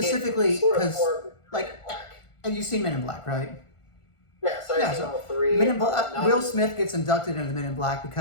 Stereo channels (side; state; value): right; late; 1.5 ms